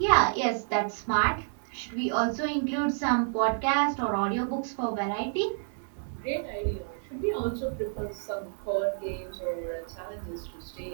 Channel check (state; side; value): silent; left; digital silence